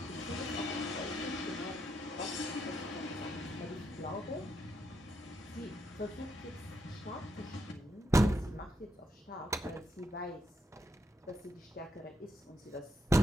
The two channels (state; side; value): normal; both; correlation 0.80